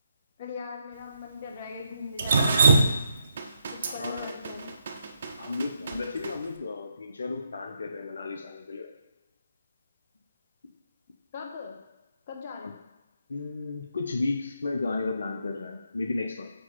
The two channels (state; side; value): inverted; both; correlation -0.79